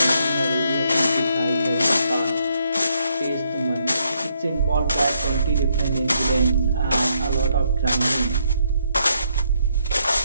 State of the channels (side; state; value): both; inverted; correlation -0.74